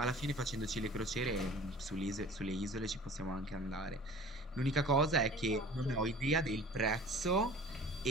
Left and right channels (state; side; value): normal; both; correlation 0.44